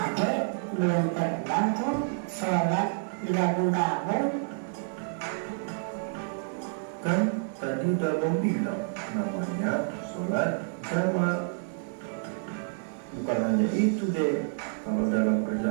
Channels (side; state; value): left; silent; digital silence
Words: belum pernah tuh sholat digabung-gabung. Kan tadi udah abang bilang namanya sholat jamak. Bukan hanya itu deh, kalau dalam